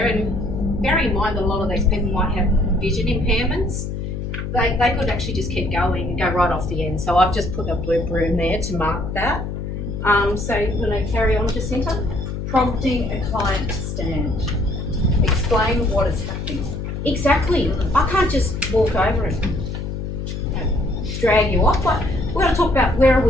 And bear in mind that a lot of these people might have vision impairments. They could actually just keep going and go right off the end. So I've just put a blue broom there to mark that. So you want to carry on, Jacinta? Prompting a client to stand. Explain what is happening. Exactly. I can't just walk over and drag you off. Like, we've got to talk about where are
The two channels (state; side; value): noise; left; hum, 5 dB below the sound